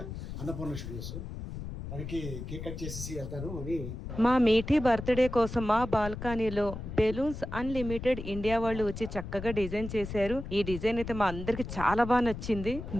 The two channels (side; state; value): left; noise; rumble, 8 dB below the sound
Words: అన్నపూర్ణ స్టూడియోస్. దానికి కేక్ కట్ చేసేసి వెళ్తాను అని. మా మీఠీ బర్త్డే కోసం మా బాల్కనీలో బెలూన్స్ అన్లిమిటెడ్ ఇండియా వాళ్ళు వచ్చి చక్కగా డిజైన్ చేశారు. ఈ డిజైన్ అయితే మా అందరికి చాలా బాగా నచ్చింది.